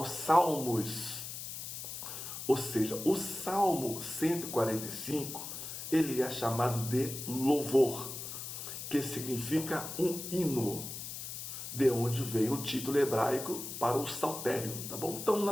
Salmos. Ou seja, o Salmo 145, ele é chamado de louvor, que significa um hino, de onde vem o título hebraico para o saltério, tá bom? Então,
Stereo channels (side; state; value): left; noise; hiss, 8 dB below the sound